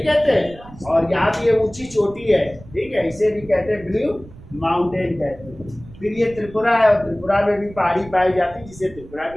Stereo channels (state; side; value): noise; right; rumble, 19 dB below the sound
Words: कहते? और यहाँ भी ये ऊंची चोटी है। ठीक है, इसे भी कहते हैं ब्लू माउंटेन कहते हैं। फिर ये त्रिपुरा है, और त्रिपुरा में भी पहाड़ी पाई जाती है जिसे त्रिपुरा